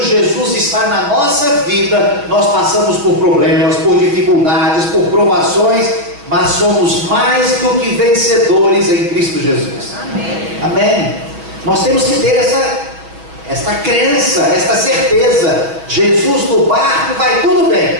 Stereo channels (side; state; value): left; late; 6.4 ms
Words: Jesus está na nossa vida, nós passamos por problemas, por dificuldades, por provações, mas somos mais do que vencedores em Cristo Jesus. Amém. Amém. Nós temos que ter esta crença, esta certeza. Jesus no barco, vai tudo bem,